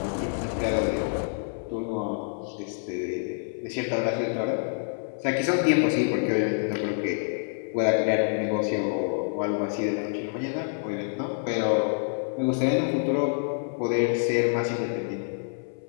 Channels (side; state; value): right; silent; 60 dB below the other